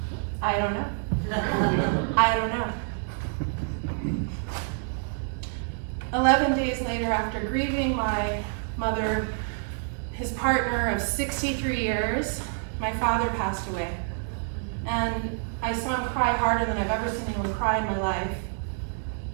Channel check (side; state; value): left; silent; 60 dB below the other